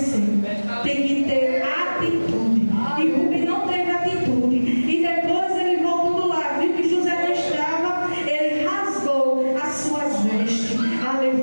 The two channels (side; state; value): both; inverted; correlation -1.00